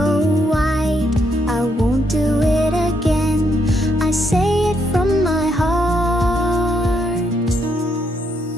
wide. I won't do it again, I say it from my heart.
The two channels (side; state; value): both; normal; correlation 0.76